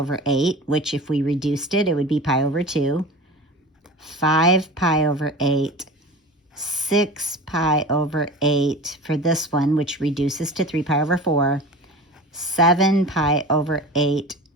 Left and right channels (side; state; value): both; normal; correlation 0.34